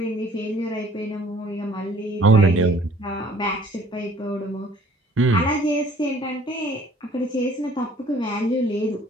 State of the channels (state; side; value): normal; both; correlation 0.56